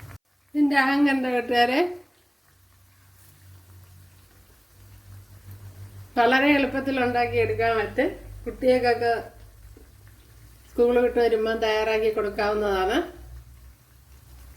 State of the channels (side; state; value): both; identical; correlation 1.00